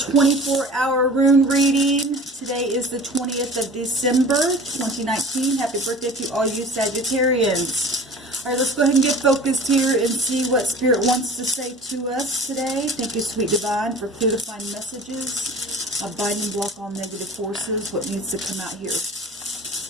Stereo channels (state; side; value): normal; both; correlation 0.41